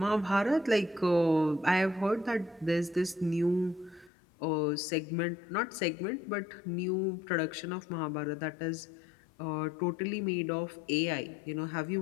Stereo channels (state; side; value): drops out; right; at 4.1 s